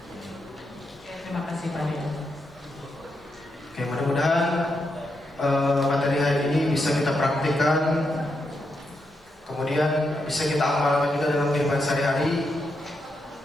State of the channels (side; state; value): both; normal; correlation 0.83